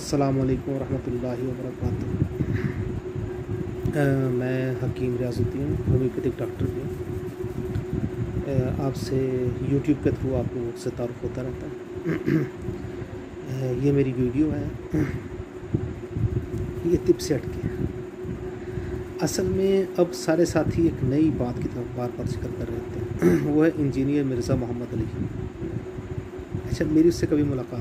علیکم ورحمۃ اللہ وبرکاتہ۔ میں حکیم ریاض الدین ہومیوپیتھک ڈاکٹر بھی ہوں۔ آپ سے یوٹیوب کے تھرو آپ لوگوں سے تعارف ہوتا رہتا ہے۔ یہ میری ویڈیو ہے، یہ طب سے ہٹ کے۔ اصل میں اب سارے ساتھی ایک نئی بات کی طرف بار بار ذکر کر رہے تھے، وہ ہے انجینئر مرزا محمد علی۔ اچھا، میری اس سے کبھی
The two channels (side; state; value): both; identical; correlation 1.00